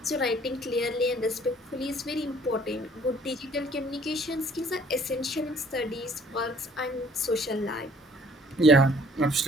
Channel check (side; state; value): both; normal; correlation 0.57